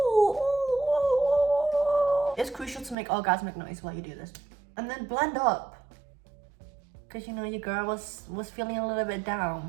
It's crucial to make orgasmic noise while you do this. And then blend up. Cause you know your girl was feeling a little bit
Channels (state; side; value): drops out; left; at 3.0 s